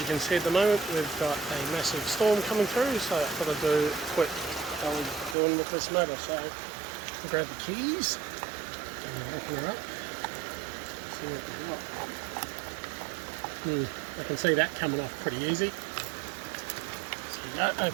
can see at the moment we've got a massive storm coming through, so I thought I'd do quick how we're doing with this motor. So I'll grab the keys and open her up, see what we've got. I can see that coming off pretty easy. Go,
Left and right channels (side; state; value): left; drops out; at 5.4 s